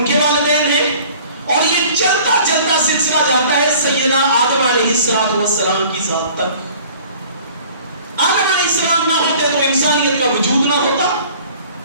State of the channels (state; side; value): inverted; both; correlation -0.49